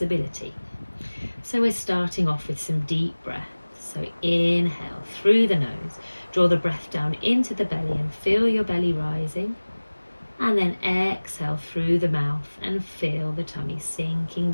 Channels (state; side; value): inverted; both; correlation -1.00